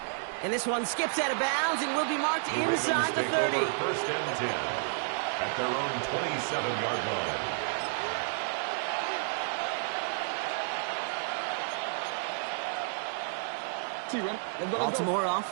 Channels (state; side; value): silent; left; digital silence